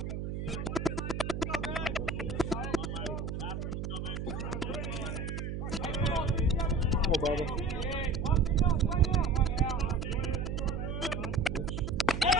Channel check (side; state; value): right; noise; hum, 4 dB below the sound